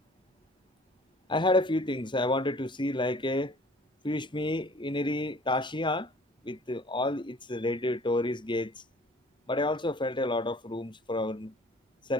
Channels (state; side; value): normal; both; correlation 0.51